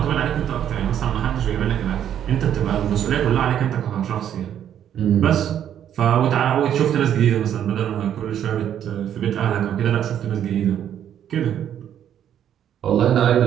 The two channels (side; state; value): left; quieter; 9.9 dB